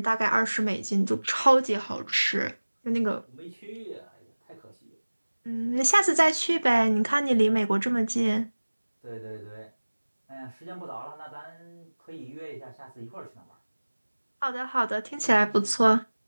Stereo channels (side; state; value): both; inverted; correlation -1.00